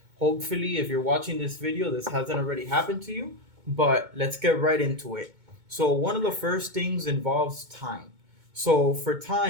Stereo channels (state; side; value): late; left; 2.2 ms